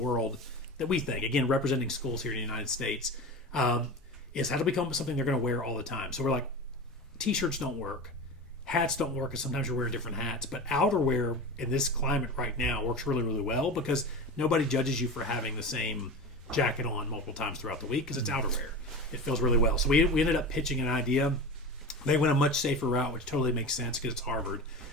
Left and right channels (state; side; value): normal; both; correlation 0.28